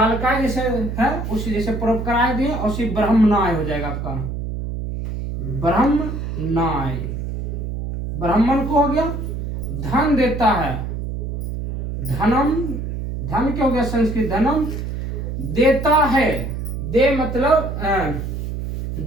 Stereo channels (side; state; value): right; noise; hum, 4 dB below the sound